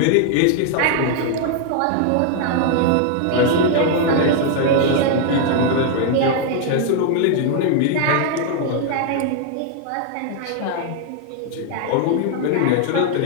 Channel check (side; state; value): both; different; correlation 0.00